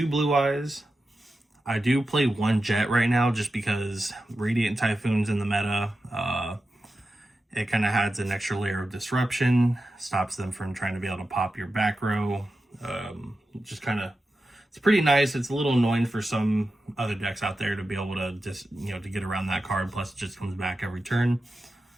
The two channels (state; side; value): normal; both; correlation 0.91